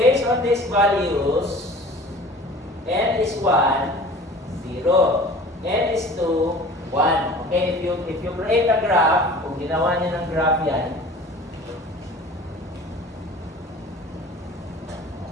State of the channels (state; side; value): normal; both; correlation 0.43